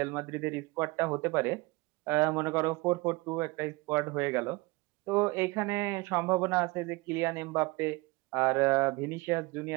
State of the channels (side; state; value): left; quieter; 24.0 dB